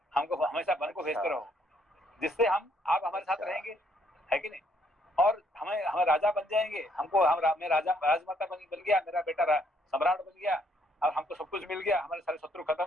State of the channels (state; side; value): normal; both; correlation 0.69